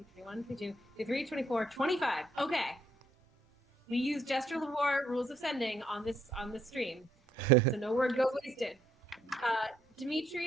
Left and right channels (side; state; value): both; normal; correlation 0.71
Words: 22, 23, 24, 25. Okay. We use gesture of war, rules of sending on this stream, so no word goes wasted.